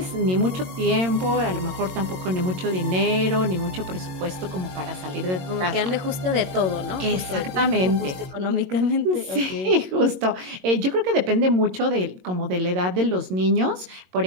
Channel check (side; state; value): left; late; 22 ms